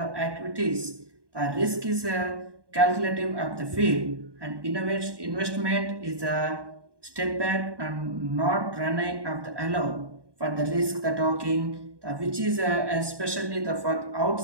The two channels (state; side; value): late; left; 1.2 ms